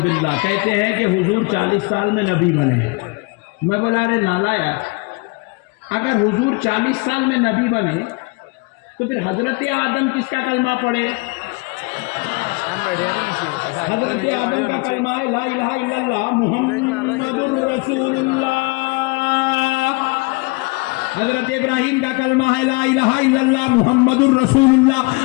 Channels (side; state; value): right; quieter; 27.8 dB